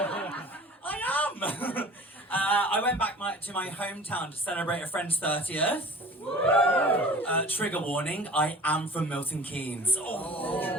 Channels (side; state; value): both; normal; correlation 0.42